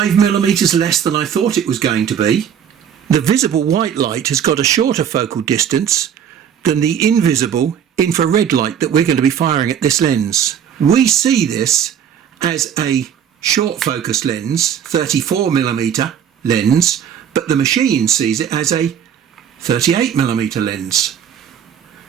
millimeters less than I thought it was going to be. The visible white light has got a shorter focal distance than the invisible infrared light that we're going to be firing at this lens. We see this as a short focus lens, 34 millimeter lens, but the machine sees it as a 38 millimeter lens.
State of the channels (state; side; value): quieter; left; 8.6 dB